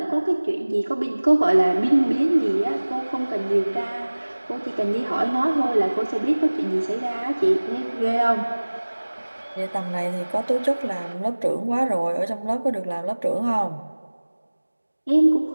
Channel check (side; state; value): both; inverted; correlation -1.00